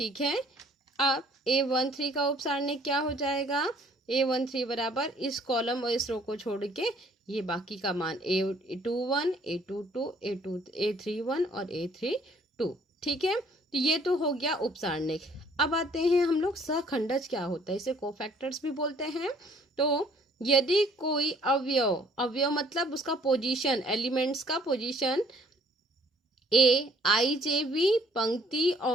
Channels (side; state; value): both; normal; correlation 0.59